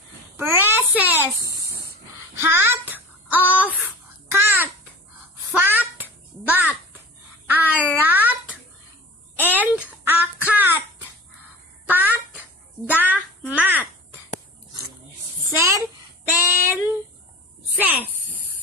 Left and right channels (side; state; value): both; normal; correlation 0.38